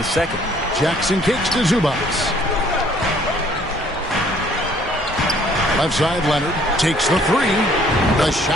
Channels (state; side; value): normal; both; correlation 0.60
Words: second. Jackson kicks to Zubats. Left side, Leonard takes the three. The